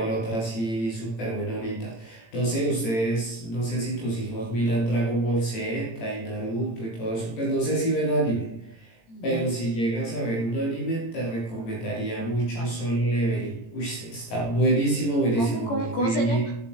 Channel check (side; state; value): right; late; 18 ms